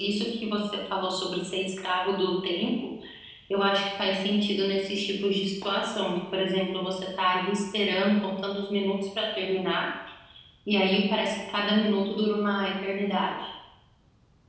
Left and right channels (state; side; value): identical; both; correlation 1.00